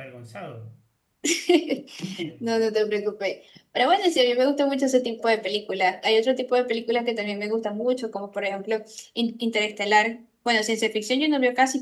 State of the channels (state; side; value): identical; both; correlation 1.00